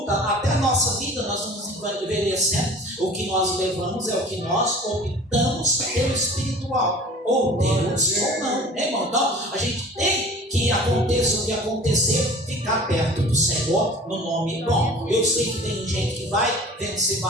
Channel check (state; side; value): normal; both; correlation 0.44